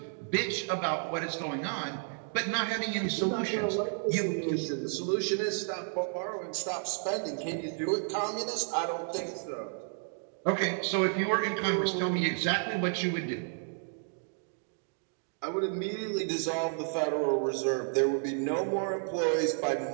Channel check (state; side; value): silent; left; 57 dB below the other